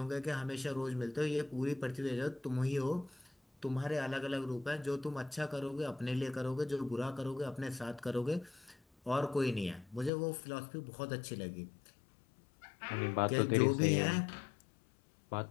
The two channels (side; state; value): right; drops out; at 10.1 s